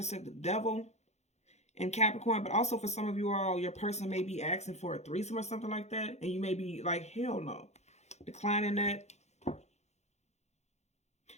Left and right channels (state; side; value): late; right; 0.32 ms